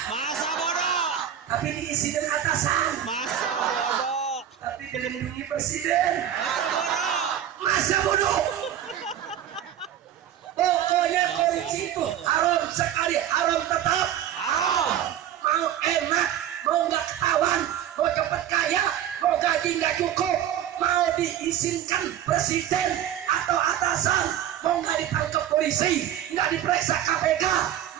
Masa bodoh. tapi diisi dengan atasan, Masa bodoh. tapi dilindungi presiden. Masa bodoh. Masa bodoh. Pokoknya korupsi itu haram sekali, haram tetap. Haram. Mau enak, mau nggak ketahuan, mau cepat kaya, mau gaji nggak cukup, mau diizinkan presiden atau atasan, mau nggak ditangkap polisi, nggak diperiksa KPK,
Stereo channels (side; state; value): left; quieter; 10.6 dB